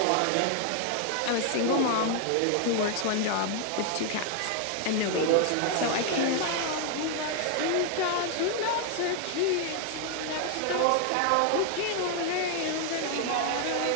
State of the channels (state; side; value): different; both; correlation 0.00